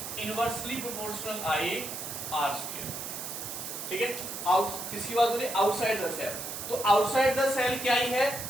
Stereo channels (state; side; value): noise; right; hiss, 7 dB below the sound